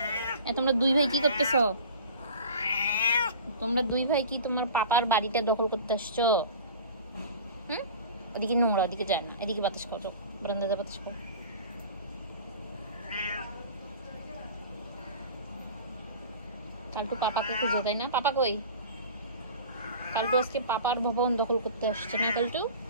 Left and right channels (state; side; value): inverted; both; correlation -0.39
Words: তোমরা দুই ভাই কি করতেছ? তোমরা দুই ভাই কি তোমার পাপার বাড়িটা দখল করতে আসছো? হুম, ওদিকে নোংরা, ওদিকে যায় না, এদিকে বাতাস খাও, চোখ বারান্দাতে বাতাস খাও। কালটু পাপাকে খুঁজে, তাই না? পাপা কই? কালটু আজকে পাপার ভবন দখল করতে আসছে না কালটু?